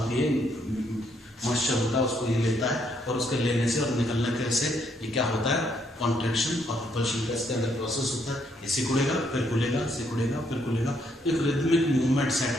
है, मॉइस्चर होता है, उसको ये लेता है और उसके लेने से और निकलने से ये क्या होता है कॉन्ट्रैक्शन और रिपल्शन का इसके अंदर प्रोसेस होता है। ये सिकुड़ेगा फिर खुलेगा, सिकुड़ेगा फिर खुलेगा, एक रिदमिक मूवमेंट सेट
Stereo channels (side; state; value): both; normal; correlation 0.72